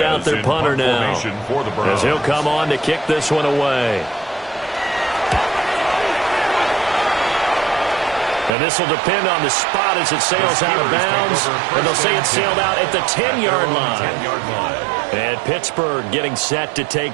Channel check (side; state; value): left; drops out; at 8.5 s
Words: out their punter now, as he'll come on to kick this one away. And this will depend on the spot as it sails out of bounds. And they'll say it sailed out at the 10-yard line. And Pittsburgh getting set to